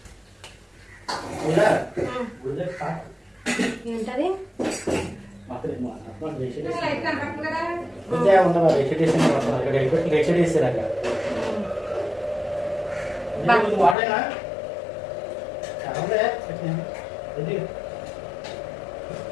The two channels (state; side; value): drops out; right; at 14.0 s